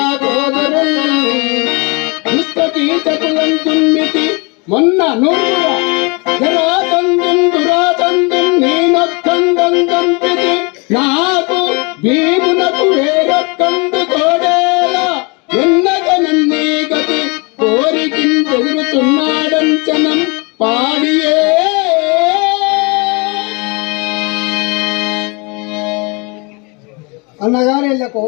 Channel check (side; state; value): right; quieter; 30.2 dB